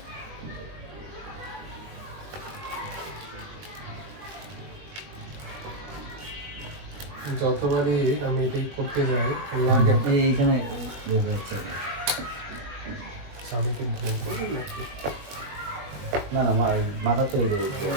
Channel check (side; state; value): left; late; 21 ms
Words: যতবারই আমি এটাই করতে যাই লাগে এইখানে দেখা যাচ্ছে স্বামীকে বলবো নাকি না না মাথা তো এই যে